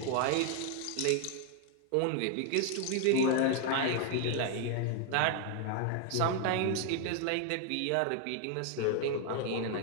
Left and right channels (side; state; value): both; different; correlation 0.00